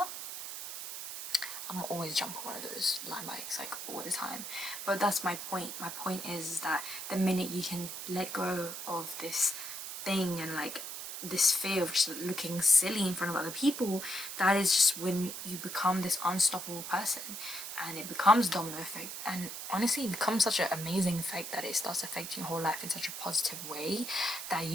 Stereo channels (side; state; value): right; noise; hiss, 7 dB below the sound